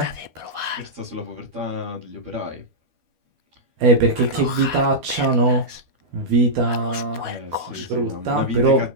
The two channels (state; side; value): late; left; 12 ms